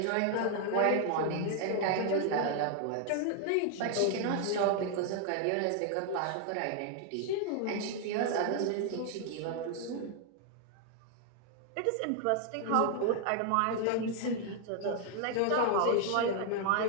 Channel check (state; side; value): different; both; correlation 0.00